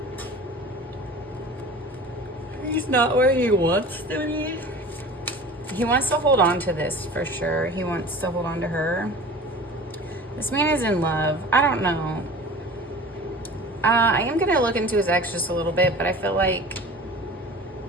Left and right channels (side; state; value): both; normal; correlation 0.39